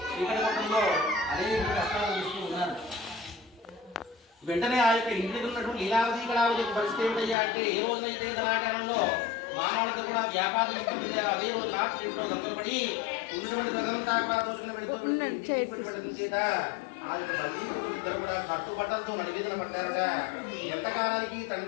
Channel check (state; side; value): drops out; right; at 7.4 s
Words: చీకటి కొట్టడంలో అనేక కష్టాలు చూస్తూ ఉన్నారు. వెంటనే ఆ యొక్క ఇంటికి ఉన్నటువంటి లీలావతి కళావతి పరిస్థితి ఏమిటయ్యా అంటే, ఏ రోజునైతే ధనాగారంలో మామాళ్ళతో కూడా వ్యాపారం అదే రోజు రాత్రి ఇంట్లో దొంగలపడి ఉన్నటువంటి ప్రజలంతా కూడా దోచుకుని వెళ్ళిపోవడం చేత ఆ యొక్క బంధువులు ఇద్దరు కూడా కట్టుబట్టలతో నడివేదన పడ్డారట. ఎంతకాలానికి